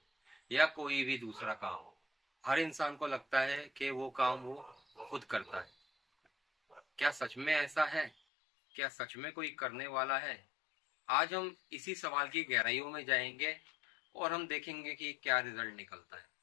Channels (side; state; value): right; drops out; at 8.1 s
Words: या कोई भी दूसरा काम हो, हर इंसान को लगता है कि वो काम वो खुद करता है। क्या सच में ऐसा है? क्या सच में कोई करने वाला है? आज हम इसी सवाल की गहराइयों में जाएंगे और हम देखेंगे कि क्या रिजल्ट निकलता है।